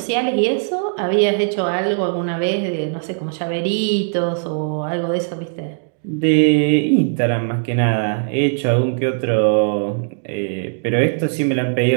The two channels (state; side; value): silent; left; digital silence